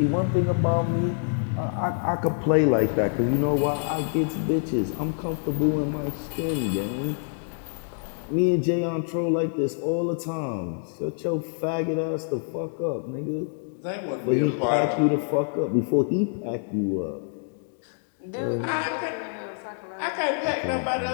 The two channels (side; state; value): right; silent; digital silence